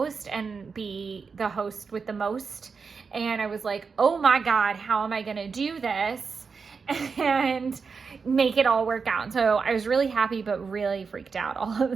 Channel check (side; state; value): left; quieter; 5.2 dB